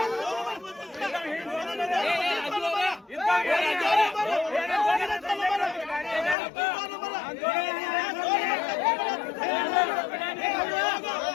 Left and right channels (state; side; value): drops out; right; at 6.4 s